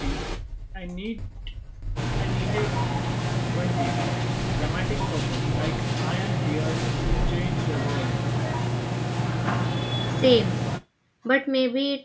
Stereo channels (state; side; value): identical; both; correlation 1.00